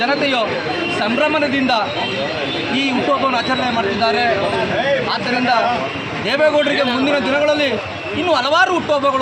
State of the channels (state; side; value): identical; both; correlation 1.00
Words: ಜನತೆಯು ಸಂಭ್ರಮದಿಂದ ಈ ಹುಟ್ಟುಹಬ್ಬವನ್ನು ಆಚರಣೆ ಮಾಡ್ತಿದ್ದಾರೆ. ಆದ್ದರಿಂದ ದೇವೇಗೌಡರಿಗೆ ಮುಂದಿನ ದಿನಗಳಲ್ಲಿ ಇನ್ನೂ ಹಲವಾರು